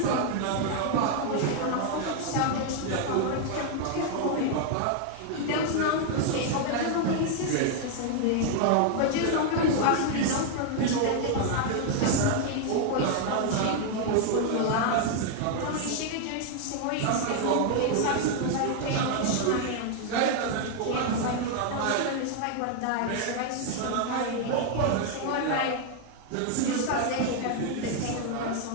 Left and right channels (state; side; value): different; both; correlation 0.00